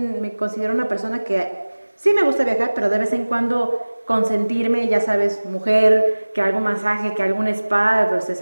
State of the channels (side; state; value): both; inverted; correlation -1.00